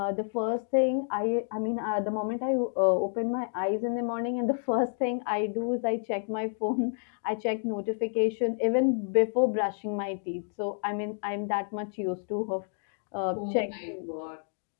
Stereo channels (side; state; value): right; silent; digital silence